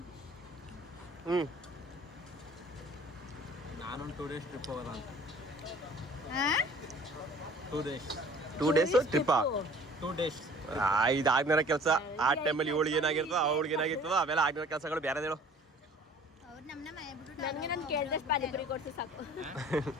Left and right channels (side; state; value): both; normal; correlation 0.50